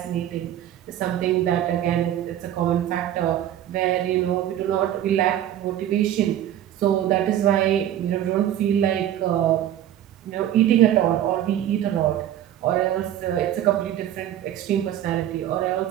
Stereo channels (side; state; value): left; quieter; 11.5 dB